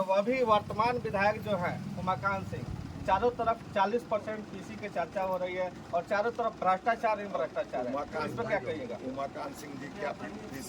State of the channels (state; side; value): identical; both; correlation 1.00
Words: भी वर्तमान विधायक जो है उमाकांत सिंह, चारों तरफ 40% पीसी की चर्चा हो रही है और चारों तरफ भ्रष्टाचार ही भ्रष्टाचार है। इस पर क्या कहिएगा? उमाकांत सिंह जी क्या